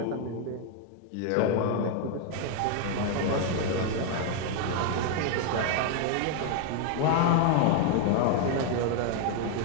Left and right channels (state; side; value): different; both; correlation 0.01